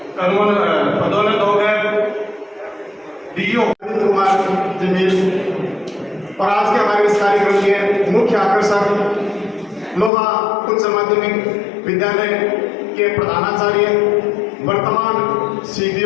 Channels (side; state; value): right; drops out; at 10.1 s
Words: पदोन्नत होकर डीओ कुमार जमील और आज के हमारे इस कार्यक्रम के मुख्य आकर्षक लोहा उच्च माध्यमिक विद्यालय के प्रधानाचार्य वर्तमान